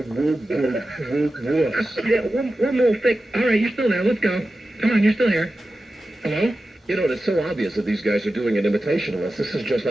wuss. Yeah, one more thing. All right, you're still there. Let's go. Come on, you're still here. Hello? You know, it's so obvious that these guys are doing an imitation of us. This is just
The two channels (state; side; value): normal; both; correlation 0.93